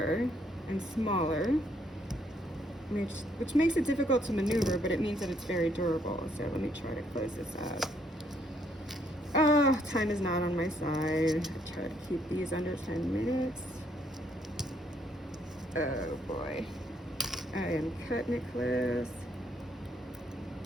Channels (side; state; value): both; normal; correlation 0.70